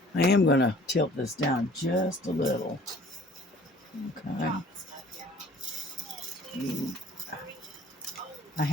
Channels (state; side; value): normal; both; correlation 0.52